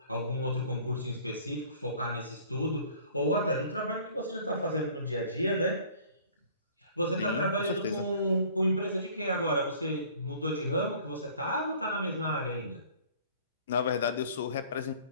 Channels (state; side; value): inverted; both; correlation -0.52